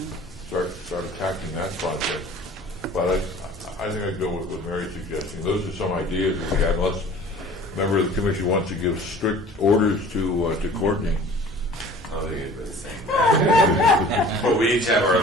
Start attacking that project. But I think I'd go with what Mary's suggesting. Those are some ideas that we had, unless a member of the commission wants to give strict orders to Courtney. I think it's the same thing. But we each have our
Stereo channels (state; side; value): normal; both; correlation 0.46